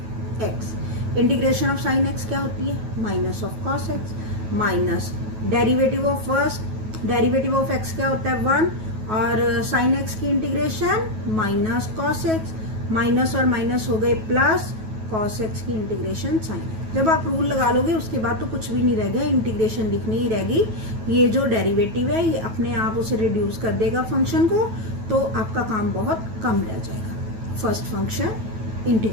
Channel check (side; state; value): left; late; 9.3 ms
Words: x. Integration of sine x क्या होती है, minus of cos x, minus derivative of first, derivative of x क्या होता है 1, और साइन एक्स की integration minus cos x, minus और minus हो गए प्लस, कॉस एक्स की इंटीग्रेशन साइन. जब आप रूल लगा लोगे उसके बाद तो कुछ भी नहीं रह गया, इंटीग्रेशन लिखनी ही रहेगी. ये जो डेरिवेटिव है ये अपने आप उसे रिड्यूस कर देगा फंक्शन को, तो आपका काम बहुत कम रह जाएगा. First function